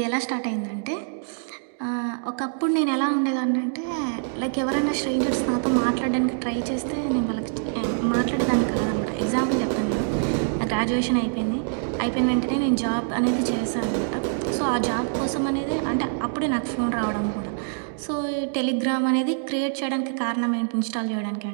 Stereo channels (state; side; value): silent; left; digital silence